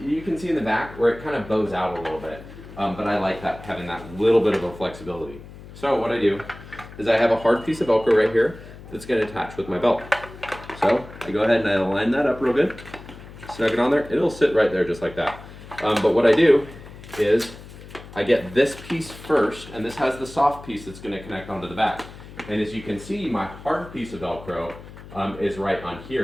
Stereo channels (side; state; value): left; noise; hum, 16 dB below the sound